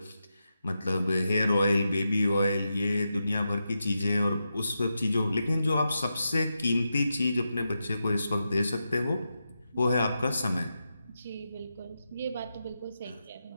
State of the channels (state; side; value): inverted; both; correlation -0.88